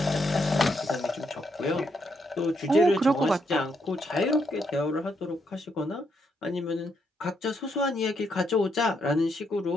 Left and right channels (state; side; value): normal; both; correlation 0.77